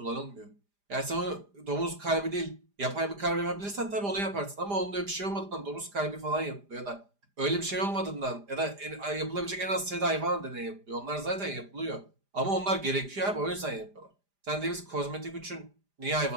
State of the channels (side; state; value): left; late; 5.0 ms